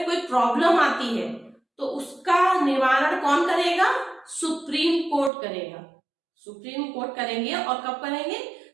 कोई प्रॉब्लम आती है तो उसका निवारण कौन करेगा? सुप्रीम कोर्ट करेगा। सुप्रीम कोर्ट करेंगे और कब करेंगे?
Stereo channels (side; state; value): left; drops out; at 5.3 s